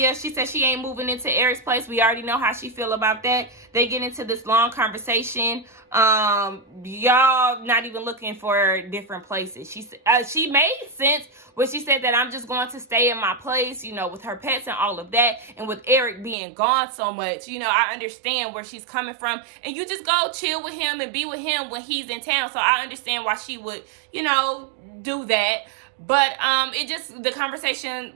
she said she ain't moving into Eric's place. We already know how she feel about that. They get into this long conversation. Y'all not even looking for different places. She made sense when she said that I'm just going to stay in my place, you know, with her pets and all of that. And with Eric being gone so much, you know, I understand where she's coming from. And you just go chill with him and be with him when he's in town. So I understand why she would, you know, do that. But the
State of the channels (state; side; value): drops out; left; at 16.4 s